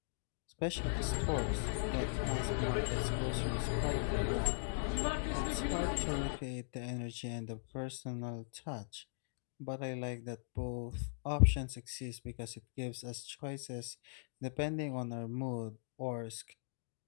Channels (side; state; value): right; silent; digital silence